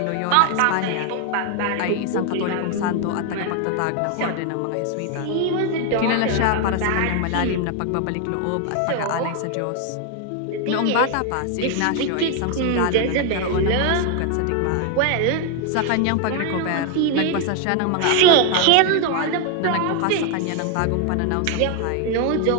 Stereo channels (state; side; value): different; both; correlation 0.01